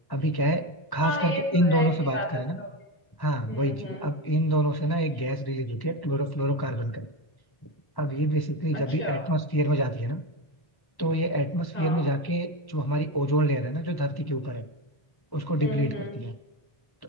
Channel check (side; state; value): right; late; 1.1 ms